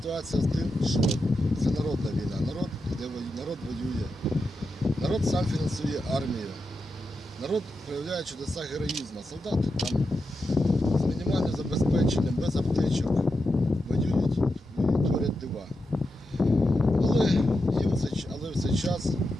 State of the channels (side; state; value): both; normal; correlation 0.88